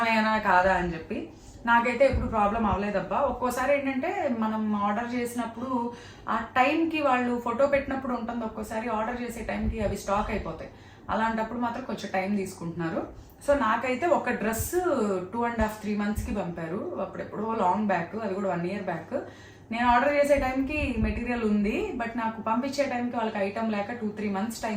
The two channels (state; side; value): identical; both; correlation 1.00